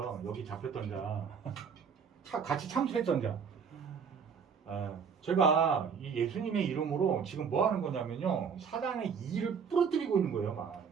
여기 잡혔던 자 같이 참수했던 자. 제가 이 예수님의 이름으로 지금 뭐 하는 거냐면요 사단의 이를 부러뜨리고 있는 거예요. 막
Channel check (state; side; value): quieter; left; 6.4 dB